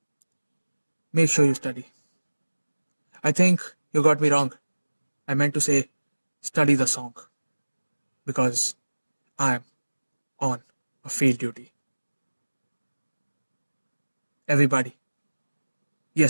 Make sure you study. I think you got me wrong. I meant to say study the song because I'm on a field duty. Everybody.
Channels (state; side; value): inverted; both; correlation -1.00